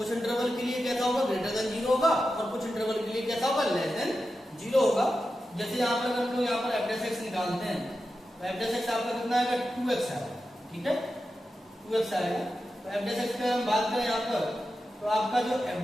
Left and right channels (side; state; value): both; normal; correlation 0.91